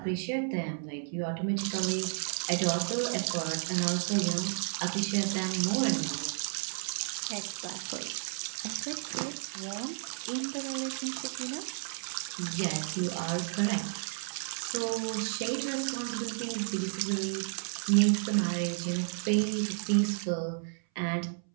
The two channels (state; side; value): silent; left; 56 dB below the other